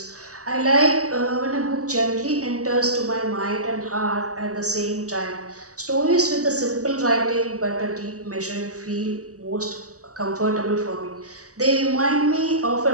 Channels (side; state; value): left; late; 0.66 ms